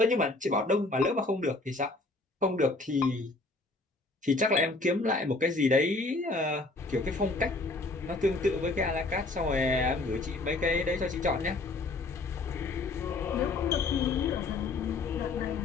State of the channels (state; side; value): quieter; right; 3.2 dB